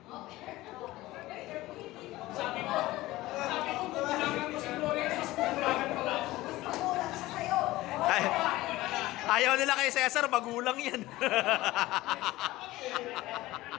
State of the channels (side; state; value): right; quieter; 17.8 dB